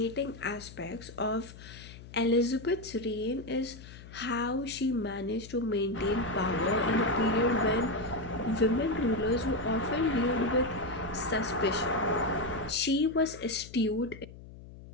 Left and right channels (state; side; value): noise; left; hum, 16 dB below the sound